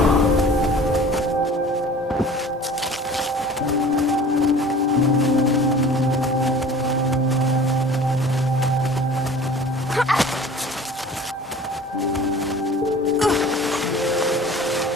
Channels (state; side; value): normal; both; correlation 0.44